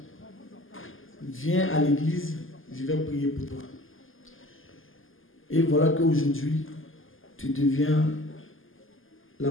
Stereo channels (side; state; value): right; late; 0.59 ms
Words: Viens à l'église, je vais prier pour toi. Et voilà qu'aujourd'hui, tu deviens la